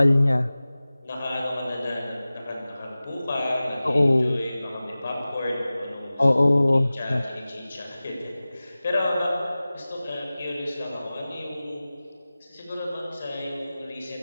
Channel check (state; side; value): inverted; both; correlation -0.98